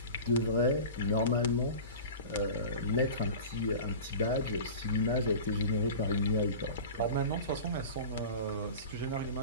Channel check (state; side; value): inverted; both; correlation -0.35